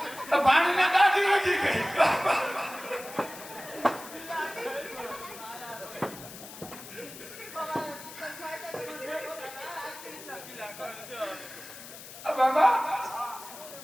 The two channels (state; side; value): noise; left; hiss, 14 dB below the sound